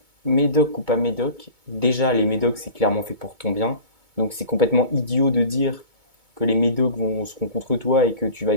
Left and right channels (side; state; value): left; late; 2.2 ms